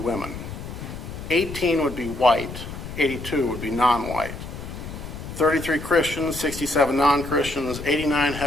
18 would be white, 82 would be non-white, 33 Christians, 67 non-Christians, 89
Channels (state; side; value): noise; left; rumble, 10 dB below the sound